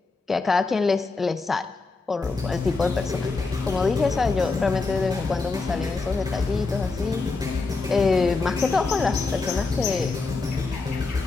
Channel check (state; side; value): quieter; right; 4.0 dB